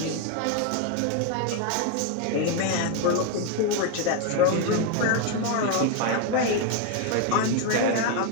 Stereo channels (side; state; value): both; different; correlation 0.01